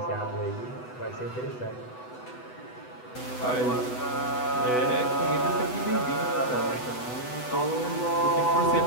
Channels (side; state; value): right; late; 8.0 ms